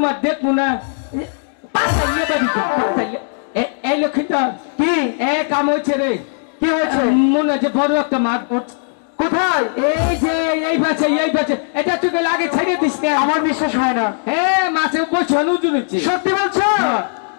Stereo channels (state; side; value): silent; right; digital silence